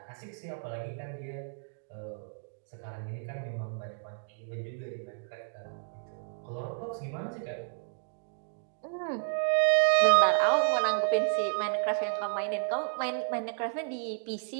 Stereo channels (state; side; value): silent; left; digital silence